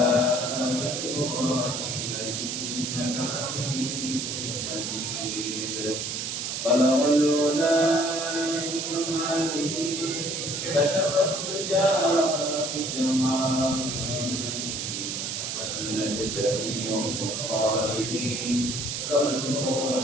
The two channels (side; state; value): right; noise; hiss, 3 dB below the sound